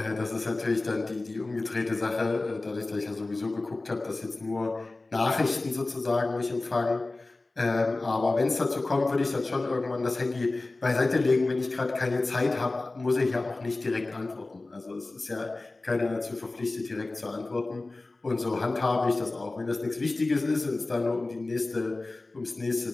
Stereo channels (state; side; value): quieter; right; 3.2 dB